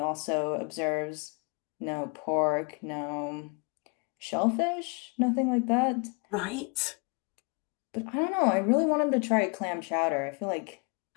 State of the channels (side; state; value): right; quieter; 33.8 dB